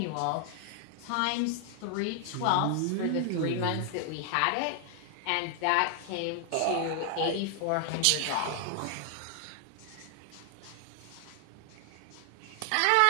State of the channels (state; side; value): different; both; correlation 0.00